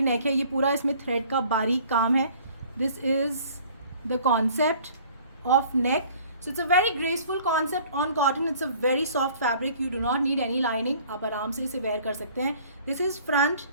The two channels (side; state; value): both; inverted; correlation -0.52